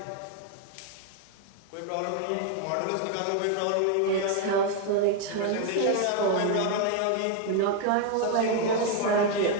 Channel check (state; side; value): different; both; correlation 0.01